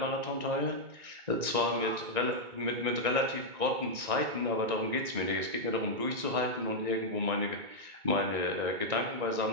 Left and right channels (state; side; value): late; left; 1.9 ms